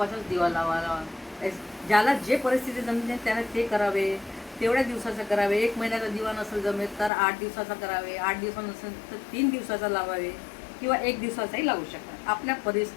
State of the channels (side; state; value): right; drops out; at 7.1 s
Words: दिवा लावावा. ज्याला जे परिस्थिती जमते त्याने ते करावे, तेवढ्या दिवसाचं करावे. 1 महिन्याचा दिवा नसेल जमेल तर 8 दिवसाचा करावे, 8 दिवस नसेल तर 3 दिवसाचा लावावे किंवा 1 दिवसाचाही लावू शकतात. आपल्या